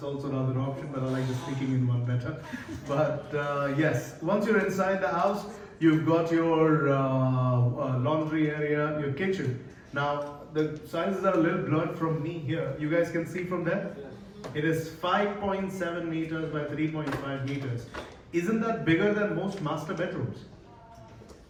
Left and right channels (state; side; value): identical; both; correlation 1.00